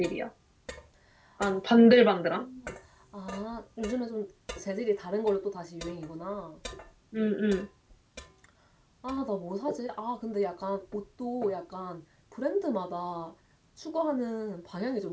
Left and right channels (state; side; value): identical; both; correlation 1.00